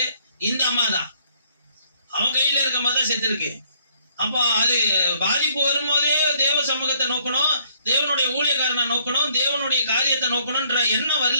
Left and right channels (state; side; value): inverted; both; correlation -0.65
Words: இந்த அம்மா தான். அவன் கையில இருக்க மாதிரி தான் செத்துருக்கு. அப்போ அது பாதிப்பு வரும்போதே தேவ சமூகத்தை நோக்கணும், தேவனுடைய ஊழியக்காரனை நோக்கணும், தேவனுடைய காரியத்தை நோக்கணும்ன்ற எண்ணம்